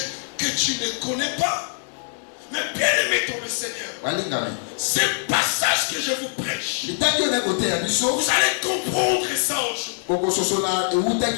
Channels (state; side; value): silent; right; digital silence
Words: que tu ne connais pas. Mais bien aimé ton le Seigneur, ce passage que je vous prêche, vous allez comprendre ça aujourd'hui.